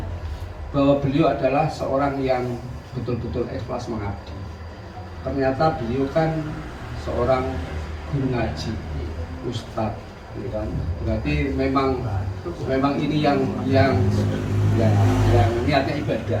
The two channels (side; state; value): both; identical; correlation 1.00